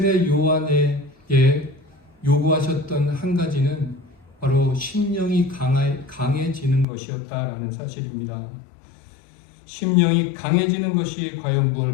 요한에게 요구하셨던 한 가지는 바로 심령이 강해지는 것이었다라는 사실입니다. 심령이 강해지는 것이 과연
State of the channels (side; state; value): right; drops out; at 6.9 s